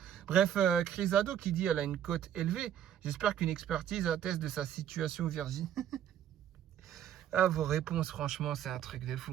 Bref, Crisado qui dit elle a une cote élevée. J'espère qu'une expertise atteste de sa situation Virginie. Ah, vos réponses, franchement, c'est un truc de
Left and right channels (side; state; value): left; quieter; 10.3 dB